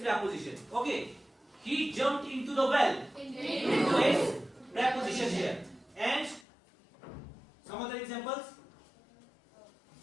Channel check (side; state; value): right; drops out; at 6.5 s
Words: Okay. He jumped into the well. Into is preposition here. And some other examples.